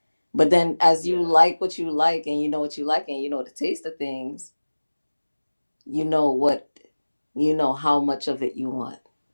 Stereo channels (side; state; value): both; inverted; correlation -1.00